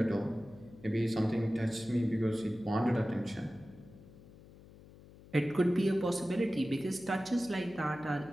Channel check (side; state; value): left; noise; hum, 21 dB below the sound